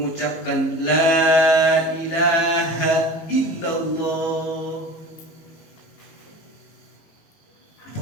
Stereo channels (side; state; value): right; late; 19 ms